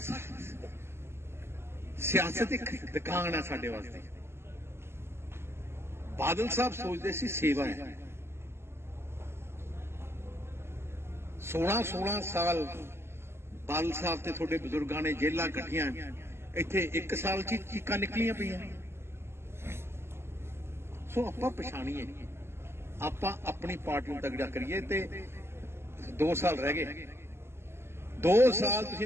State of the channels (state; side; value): late; left; 0.12 ms